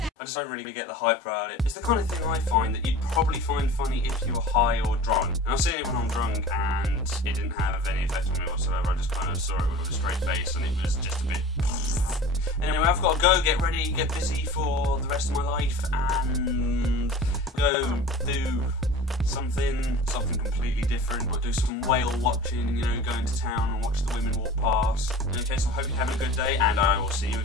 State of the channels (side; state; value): both; normal; correlation 0.40